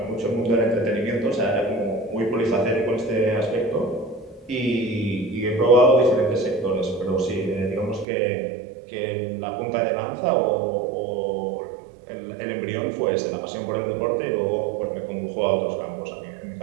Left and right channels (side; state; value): left; drops out; at 8.1 s